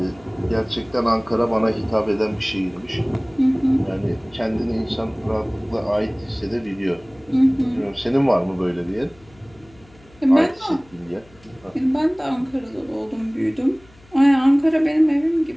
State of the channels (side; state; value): left; noise; hum, 27 dB below the sound